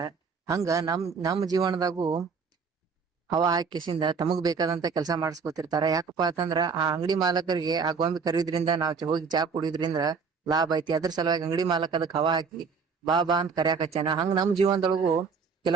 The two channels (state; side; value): quieter; left; 5.4 dB